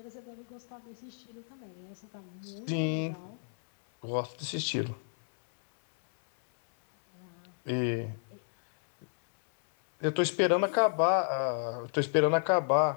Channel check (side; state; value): right; silent; 57 dB below the other